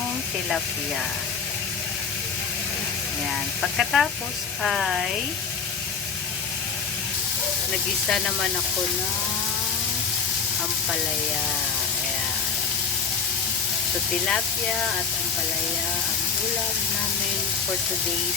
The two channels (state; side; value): quieter; right; 5.8 dB